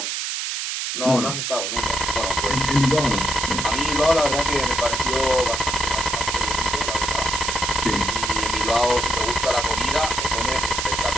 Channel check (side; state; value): right; noise; hiss, 2 dB below the sound